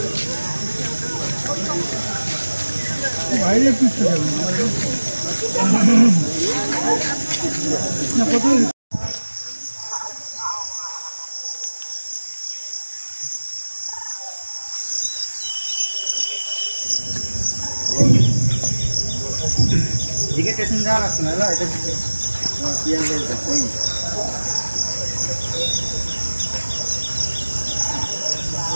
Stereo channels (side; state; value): both; inverted; correlation -1.00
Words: বাইরে পিছতে যাবে না কত দিকে স্টেশন যাওয়ার রাস্তা না এটা দিকে পিএল রেল যাচ্ছে